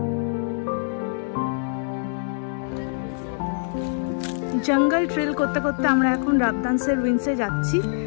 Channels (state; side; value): silent; right; digital silence